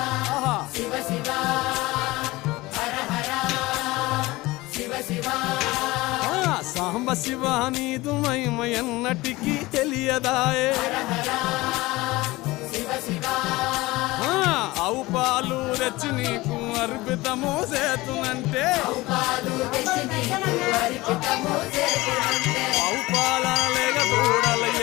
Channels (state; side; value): quieter; right; 20.2 dB